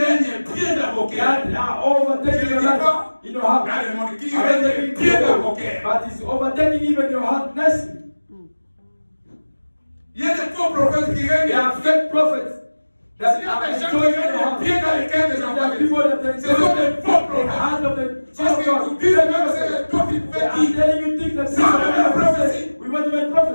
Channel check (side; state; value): both; inverted; correlation -1.00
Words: règnent bien d'avocats. That are overtaking your life. You know how? Dans le monde qui règnent bien d'avocats. But it's overtaking even your heart nicely. Il y a des faux prophètes qui règnent. There are fake prophets. Il y a des gens qui règnent bien dans les cœurs des enfants. Ce sont des faux prophètes. Parce qu'ils vous disent même que c'est le temps qui fait I'm telling you things that c'est la prophétie. we want to make